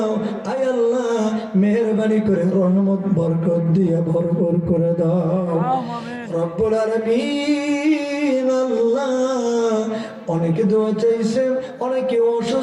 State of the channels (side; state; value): both; identical; correlation 1.00